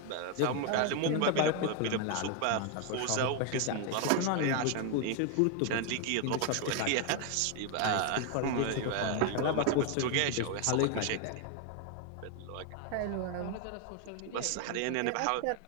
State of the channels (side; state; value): both; different; correlation 0.01